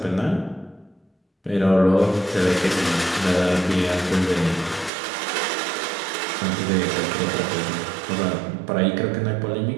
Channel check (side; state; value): left; drops out; at 4.9 s